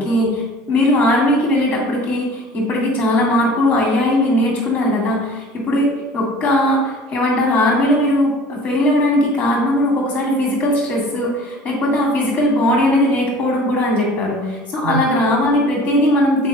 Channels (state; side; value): normal; both; correlation 0.46